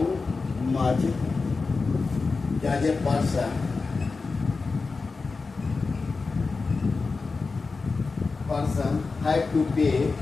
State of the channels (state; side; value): quieter; right; 4.2 dB